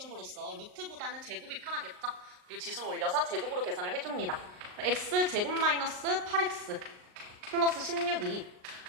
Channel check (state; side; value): late; left; 39 ms